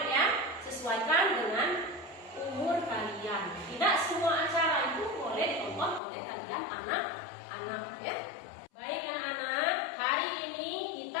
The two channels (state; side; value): drops out; right; at 6.0 s